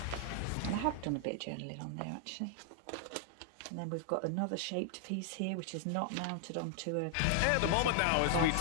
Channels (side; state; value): both; different; correlation 0.00